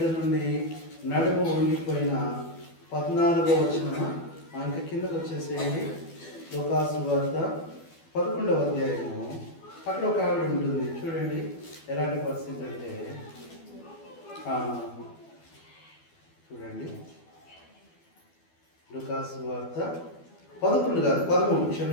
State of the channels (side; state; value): right; late; 12 ms